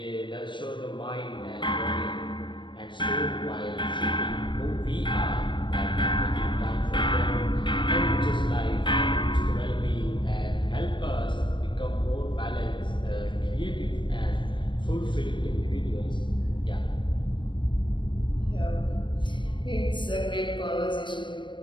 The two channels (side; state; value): right; late; 0.23 ms